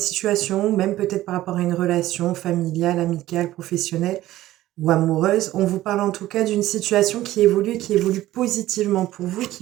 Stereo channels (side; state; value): left; quieter; 15.1 dB